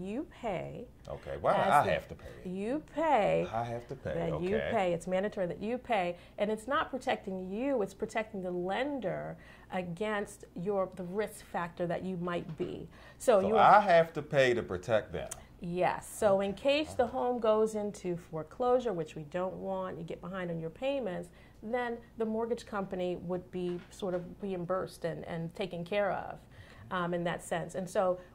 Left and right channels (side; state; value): both; identical; correlation 1.00